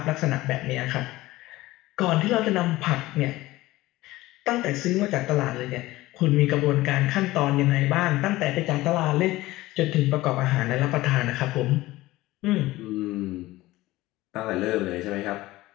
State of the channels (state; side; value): quieter; right; 18.0 dB